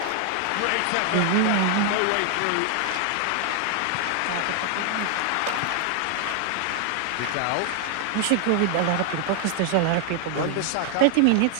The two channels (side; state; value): both; different; correlation 0.00